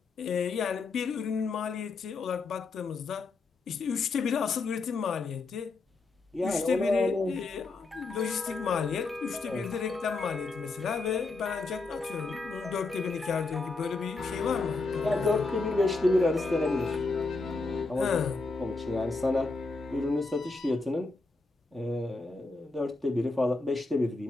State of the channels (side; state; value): right; quieter; 3.7 dB